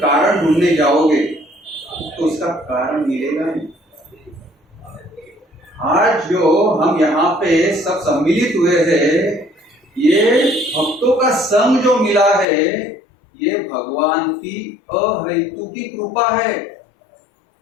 ढूंढने जाओगे तो उसका कारण मिलेगा नहीं। आज जो हम यहाँ पे सब सम्मिलित हुए हैं, ये भक्तों का संग जो मिला है, ये भगवान की अहेतुकी कृपा है।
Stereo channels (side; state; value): right; drops out; at 12.5 s